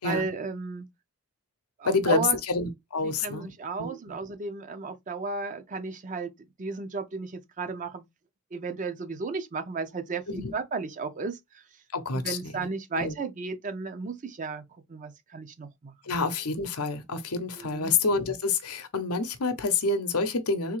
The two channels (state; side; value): normal; both; correlation 0.00